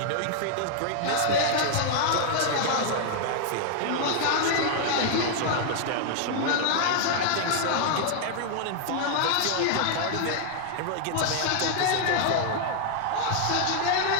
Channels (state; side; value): different; both; correlation 0.00